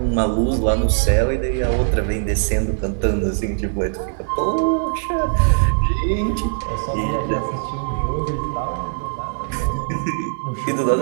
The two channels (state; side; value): silent; left; 65 dB below the other